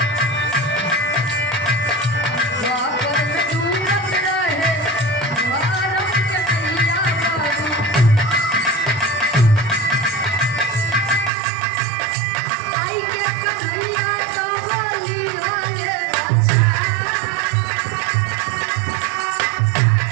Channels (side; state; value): left; drops out; at 11.3 s